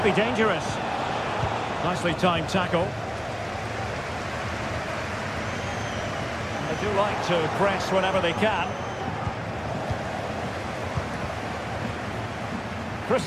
be dangerous. Nicely timed tackle. They do like to press whenever they can.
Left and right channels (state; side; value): identical; both; correlation 1.00